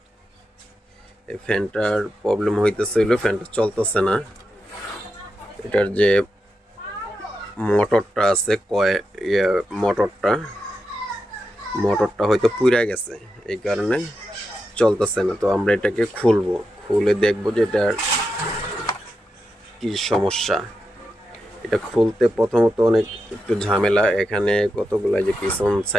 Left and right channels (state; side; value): normal; both; correlation 0.87